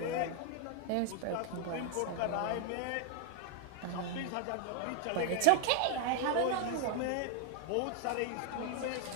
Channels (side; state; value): both; different; correlation 0.00